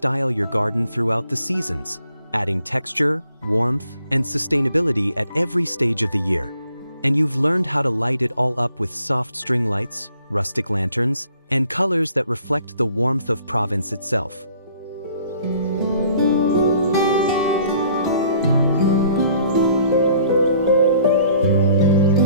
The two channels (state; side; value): inverted; both; correlation -0.59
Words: your garden throughout the seasons, adding texture, warmth, and sustainability at every stage of the year. And you've learned how to light it all up with soft string lights, rustic lanterns, and colors that reflect the warmth of Provence itself.